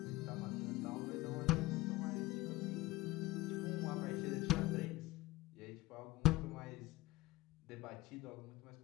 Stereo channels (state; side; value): quieter; right; 19.2 dB